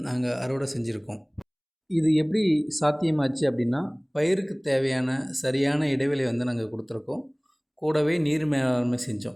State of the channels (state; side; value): identical; both; correlation 1.00